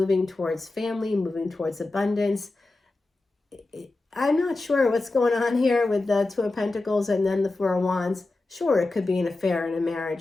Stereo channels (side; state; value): right; quieter; 3.1 dB